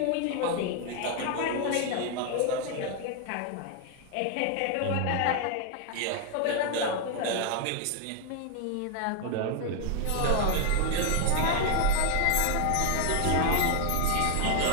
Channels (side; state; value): both; different; correlation 0.00